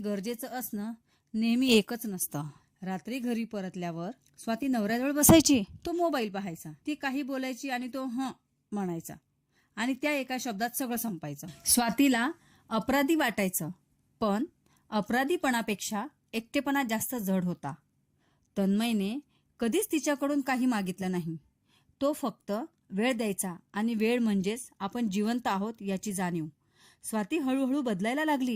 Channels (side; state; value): both; identical; correlation 1.00